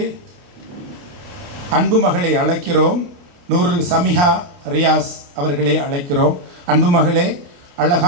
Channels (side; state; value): left; late; 28 ms